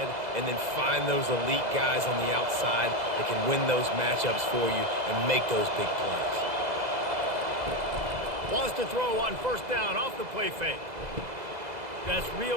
and then find those elite guys on the outside that can win those matchups for you and make those big plays. Wants to throw on first down off the play fake. That's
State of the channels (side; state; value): left; late; 2.0 ms